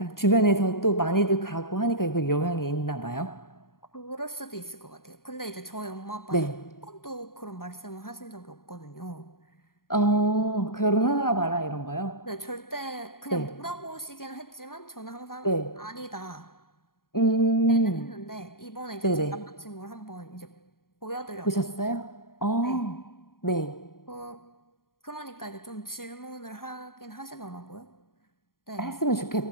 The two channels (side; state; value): right; late; 0.92 ms